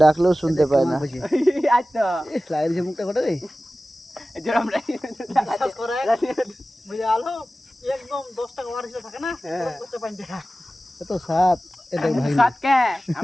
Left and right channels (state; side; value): normal; both; correlation 0.96